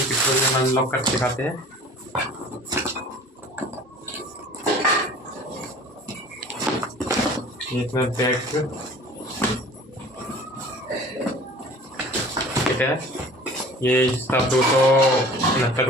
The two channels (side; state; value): both; normal; correlation 0.45